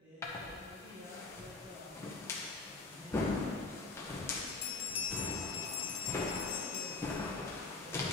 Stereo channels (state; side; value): quieter; right; 3.8 dB